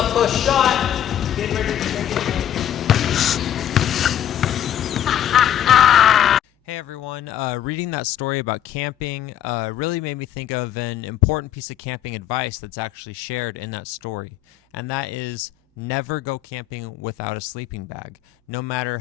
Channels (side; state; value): right; quieter; 10.7 dB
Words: close shot. Get ready to take it. Hey everyone, reading that story about camping really made me think of an important piece of camping advice that's actually shared in that story, and that is never go camping without a sleeping bag. No matter